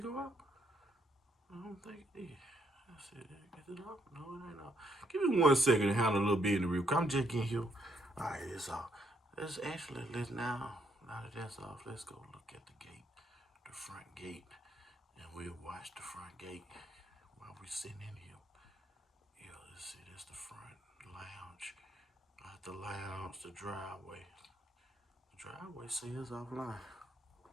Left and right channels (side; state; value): both; normal; correlation 0.73